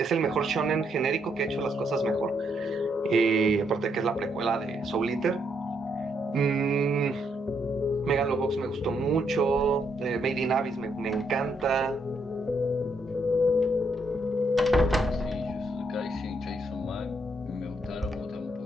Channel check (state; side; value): normal; both; correlation 0.75